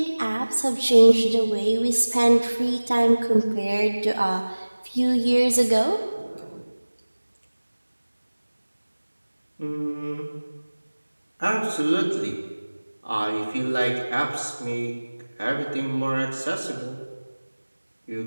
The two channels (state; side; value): inverted; both; correlation -1.00